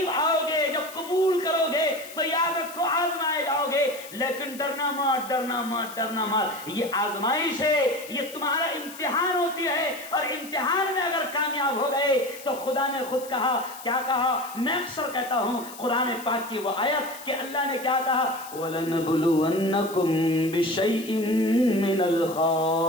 آؤ گے, جب قبول کرو گے تو یاد رکھو آزمائے جاؤ گے. لیکن ڈرنا مت, ڈرنا مت, ڈرنا مت. یہ آزمائش ہے, یہ تمہارا امتحان ہوتی ہے, اور امتحان میں اگر کامیاب ہو گئے تو خدا نے خود کہا. کیا کہا؟ میں اکثر کہتا ہوں قرآن پاک کی وہ آیت کہ اللہ نے کیا کہا, وَلَنَبْلُوَنَّكُمْ بِشَيْءٍ مِّنَ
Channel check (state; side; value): noise; left; hiss, 16 dB below the sound